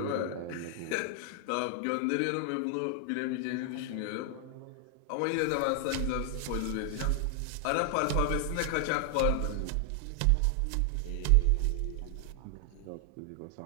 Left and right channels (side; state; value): both; different; correlation 0.00